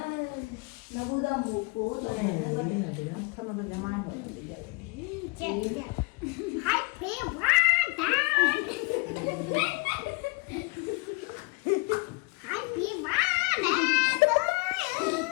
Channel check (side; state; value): right; quieter; 28.9 dB